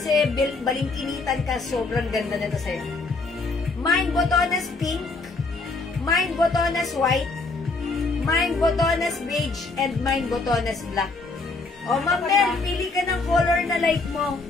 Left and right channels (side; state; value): right; quieter; 3.6 dB